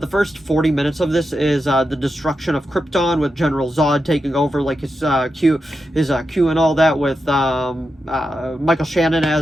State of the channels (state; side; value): normal; both; correlation 0.88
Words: first 40 minutes of this is the destruction of Krypton with General Zod taking over, like his Q and all that, with Michael Shannon